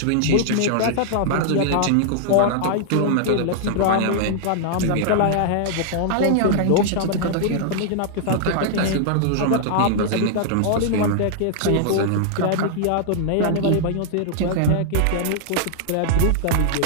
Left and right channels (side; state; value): both; different; correlation -0.01